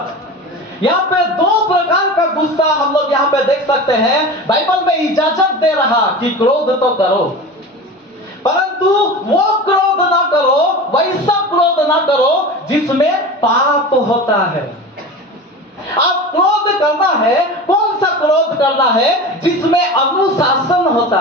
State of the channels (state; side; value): normal; both; correlation 0.31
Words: यहाँ पे दो प्रकार का गुस्सा हम लोग यहाँ पे देख सकते हैं। बाइबल में इजाजत दे रहा कि क्रोध तो करो परंतु वो क्रोध ना करो, वैसा क्रोध ना करो जिसमें पाप होता है। आप क्रोध करना है, कौन सा क्रोध करना है? जिसमें अनुशासन होता